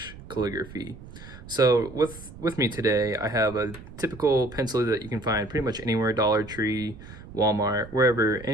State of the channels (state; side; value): noise; right; rumble, 16 dB below the sound